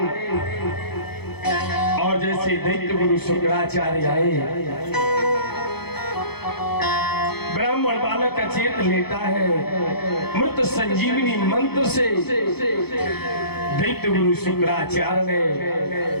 और जैसे दैत्य गुरु शुक्राचार्य आए, ब्राह्मण बालक अचेत लेता है। मृत संजीवनी मंत्र से दैत्य गुरु शुक्राचार्य ने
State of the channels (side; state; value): right; late; 0.97 ms